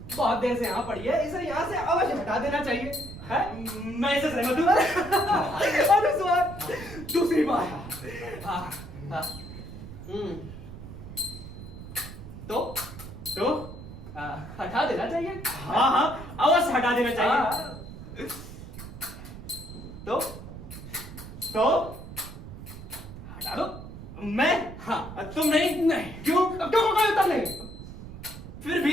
बहुत देर से यहाँ पड़ी है, इसे यहाँ से अवश्य हटा देना चाहिए। है? मैं इसे सहमत हूँ। अनुस्वार दूसरी बार। हाँ, हाँ। तो हटा देना चाहिए। हाँ हाँ, अवश्य हटा देना चाहिए। तो हटा दो। मैं? हाँ। तुम नहीं? नहीं। क्यों? अब क्यों कोई उत्तर नहीं? फिर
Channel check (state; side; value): noise; right; rumble, 13 dB below the sound